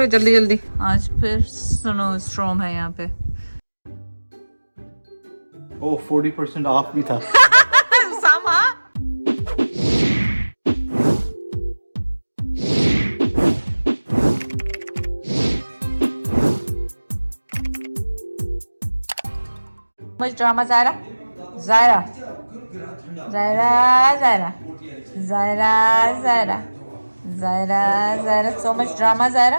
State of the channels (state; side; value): inverted; both; correlation -1.00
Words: जल्दी जल्दी। आज फिर स्नो स्टॉर्म है यहाँ पे। ओ 40% ऑफ भी था। सामा मुझे drama Zaira Zaira Zaira Zaira Zaira Zaira Zaira Zaira so much drama Zaira.